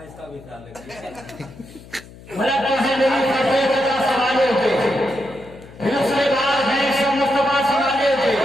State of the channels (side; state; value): left; noise; hum, 20 dB below the sound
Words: اس کا بھی خیال رکھیے.